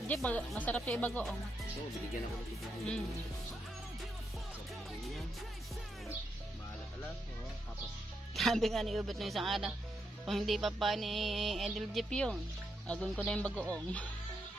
Masarap yung ibagoong. Oo, binigyan ako ng tubig. Maalat-alat. Tapos. Sabi nga ni Ubet ng isang araw, kung hindi pa pa ni Edel Jeep yun, agun ko na yung bagoong.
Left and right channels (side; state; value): both; normal; correlation 0.82